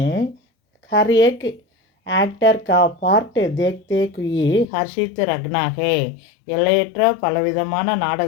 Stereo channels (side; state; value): right; drops out; at 4.7 s